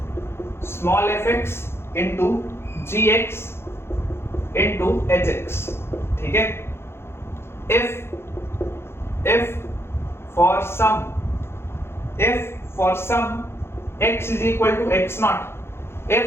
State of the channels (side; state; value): right; late; 0.12 ms